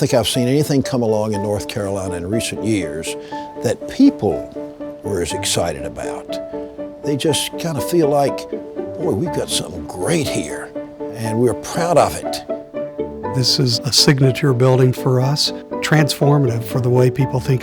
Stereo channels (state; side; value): identical; both; correlation 1.00